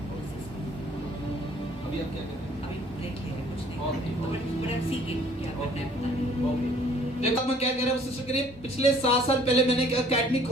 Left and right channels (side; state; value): both; normal; correlation 0.57